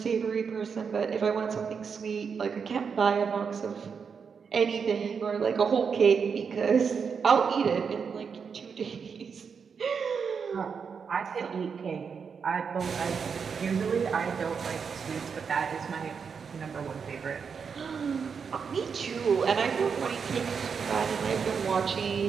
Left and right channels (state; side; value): quieter; left; 6.1 dB